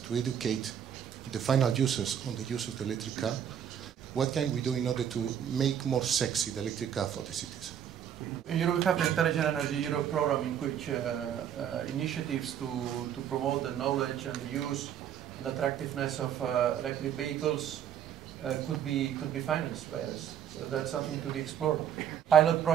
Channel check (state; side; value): quieter; left; 9.2 dB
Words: to educate the final users on the use of the electric car? What can we do in order to make more sexy the electric car for the citizens? In Europe, we have the Intelligent Energy Europe program, in which initiatives to promote the knowledge and the use and attractiveness of electric vehicles could be financed by us. So that's something to be explored. Pilot